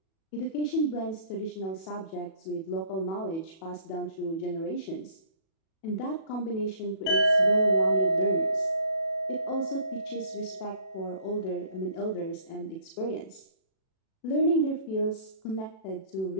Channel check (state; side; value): late; right; 37 ms